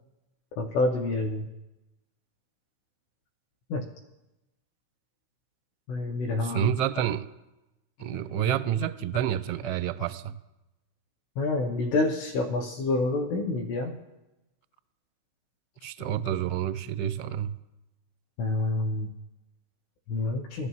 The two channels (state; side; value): late; right; 16 ms